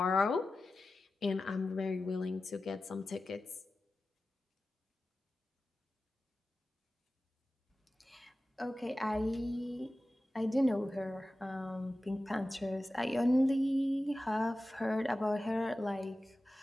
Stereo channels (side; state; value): both; normal; correlation 0.94